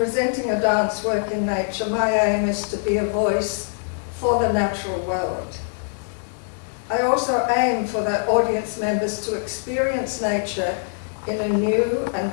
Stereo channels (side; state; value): right; silent; 60 dB below the other